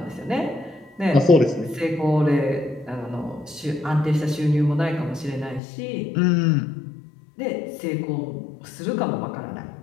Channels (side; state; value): right; drops out; at 5.6 s